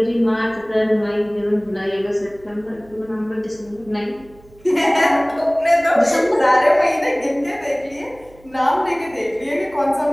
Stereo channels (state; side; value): noise; right; hum, 26 dB below the sound